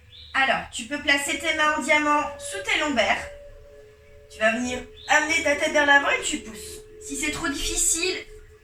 Alors, tu peux placer tes mains en diamant sous tes lombaires. Tu vas venir amener ta tête vers l'avant et tu pousses. Si c'est trop difficile,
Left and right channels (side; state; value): both; identical; correlation 1.00